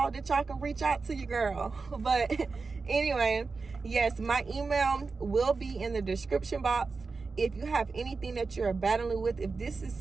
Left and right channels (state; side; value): quieter; left; 4.3 dB